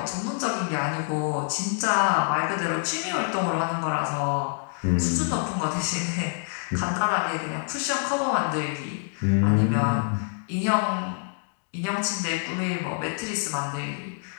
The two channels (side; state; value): right; silent; 61 dB below the other